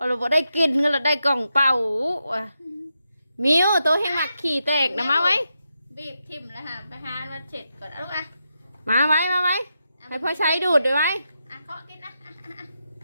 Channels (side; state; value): both; inverted; correlation -0.86